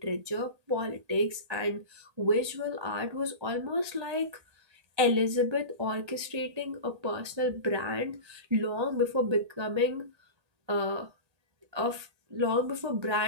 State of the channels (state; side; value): late; left; 1.8 ms